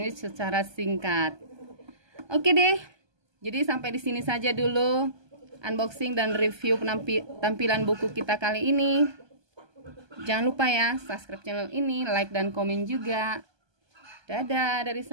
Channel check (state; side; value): late; left; 1.2 ms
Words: secara singkat. Oke deh. Jadi sampai di sini saja dulu unboxing dan review tampilan buku kita kali ini. Jangan lupa ya subscribe channel ini, like dan komen juga. Dadah dari